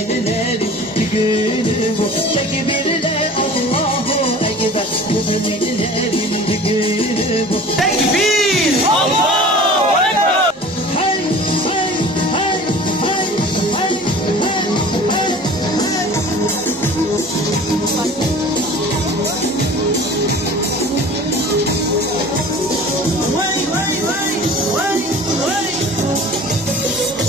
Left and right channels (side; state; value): both; normal; correlation 0.42